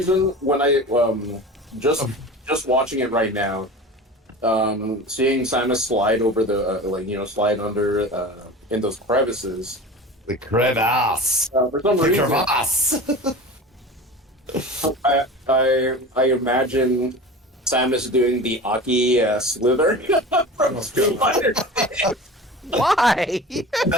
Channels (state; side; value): normal; both; correlation 0.34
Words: when I just watching it right now, seeing Samus slide over the slide under in those crevices. the crevasse. For some The reason, crevasse. I imagine Samus doing the Aki slither from Street Fighter. Why?